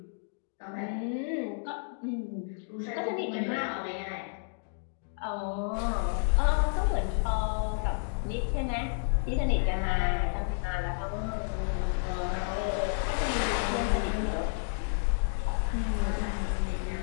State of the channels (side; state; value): right; silent; digital silence